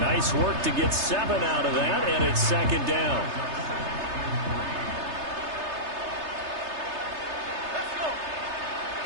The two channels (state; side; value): late; left; 3.3 ms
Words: Nice work to get 7 out of that, and it's 2nd down.